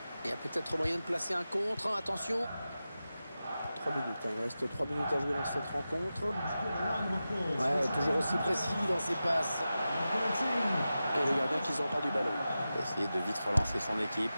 Il y a peut-être moyen de placer un contre. Attention. 3 minutes. Il reste 3 minutes à jouer dans cette rencontre. Ouais, toujours aussi précis dans ses passes. Et le gardien qui s'empare du ballon. Il va essayer de vite relancer son équipe.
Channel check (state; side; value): inverted; both; correlation -0.93